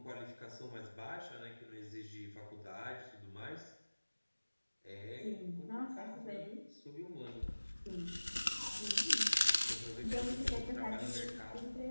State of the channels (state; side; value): inverted; both; correlation -1.00